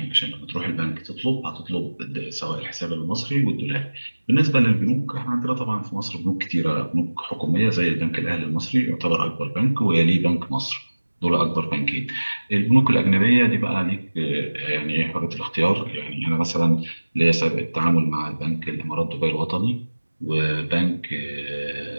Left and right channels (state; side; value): inverted; both; correlation -1.00